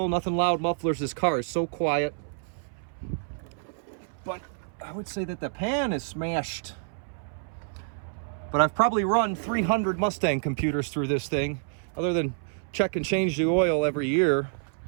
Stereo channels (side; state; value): left; silent; 59 dB below the other